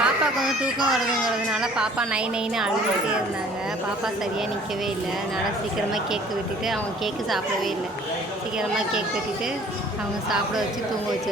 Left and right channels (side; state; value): both; normal; correlation 0.53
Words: தூக்கம் வருதுங்கிறதுனால பாப்பா நைன்னு அழுதுகிட்டே இருந்தாங்க. பாப்பா சரியாக நிற்கவே இல்லை. அதனால் சீக்கிரமாக கேக்கு வெட்டிட்டு அவங்க கேக்கு சாப்பிடவே இல்லை. சீக்கிரமாக கேக் வெட்டிட்டு அவங்க சாப்பிட வச்சு தூங்க